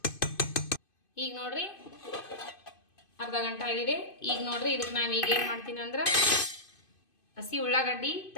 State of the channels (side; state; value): right; late; 2.5 ms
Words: ಈಗ ನೋಡ್ರಿ ಅರ್ಧ ಗಂಟೆ ಆಗಿದೆ. ಈಗ ನೋಡ್ರಿ ಇದಕ್ಕೆ ನಾವು ಈಗ ಏನು ಮಾಡ್ತೀನಿ ಅಂದ್ರೆ ಹಸಿ ಉಳ್ಳಾಗಡ್ಡಿ